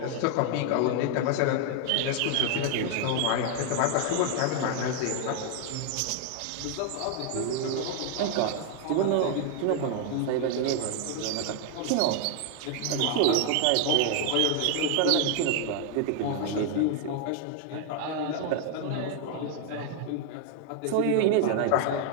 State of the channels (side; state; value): both; different; correlation 0.00